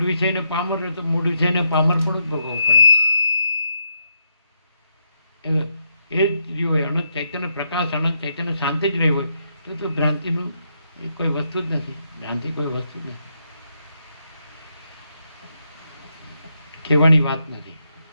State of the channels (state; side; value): inverted; both; correlation -0.78